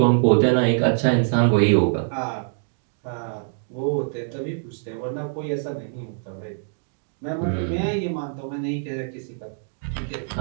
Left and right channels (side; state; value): left; silent; digital silence